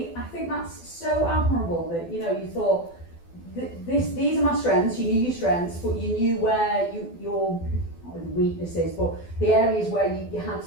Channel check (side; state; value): right; late; 12 ms